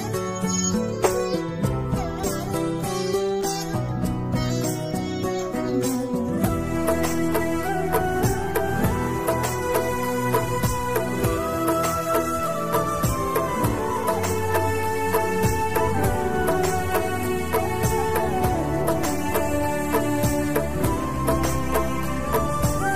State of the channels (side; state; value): both; identical; correlation 1.00